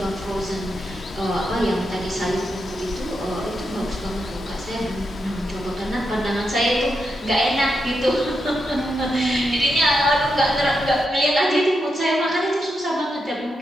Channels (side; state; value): both; normal; correlation 0.85